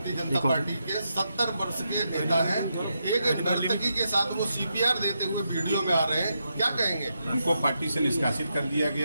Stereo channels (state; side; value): inverted; both; correlation -0.83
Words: जनता पार्टी के 70 वर्ष के नेता हैं। एक नर्तकी के साथ वो CPR देते हुए वीडियो में आ रहे हैं, क्या कहेंगे? उनको पार्टी से निष्कासित कर दिया